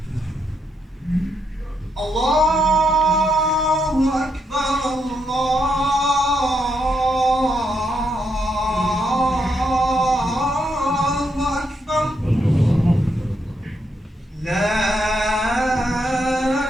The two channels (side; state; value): both; normal; correlation 0.79